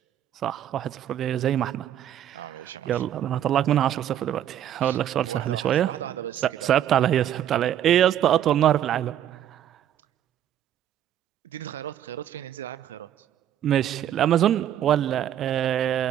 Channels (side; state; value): left; quieter; 10.8 dB